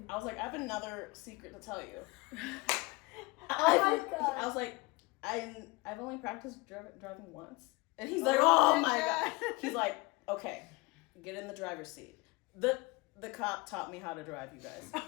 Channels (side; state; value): right; quieter; 24.7 dB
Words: I was like, "I have another secret to tell you." Oh my god. I was like, I've only practiced driving once. And he's like, "Oh my god." He's like, Okay, get in the driver's seat. The cop taught me how to drive, you guys.